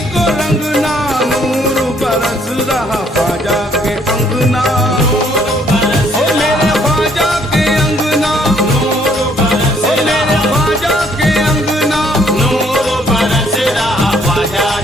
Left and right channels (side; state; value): both; normal; correlation 0.65